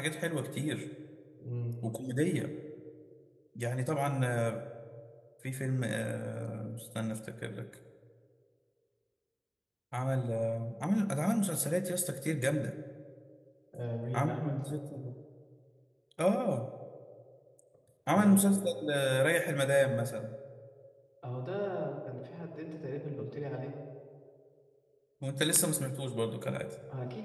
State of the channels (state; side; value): identical; both; correlation 1.00